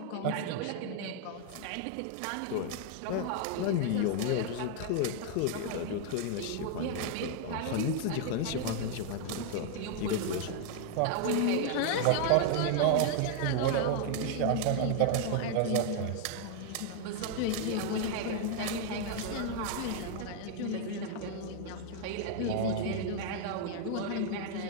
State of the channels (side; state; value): both; different; correlation 0.00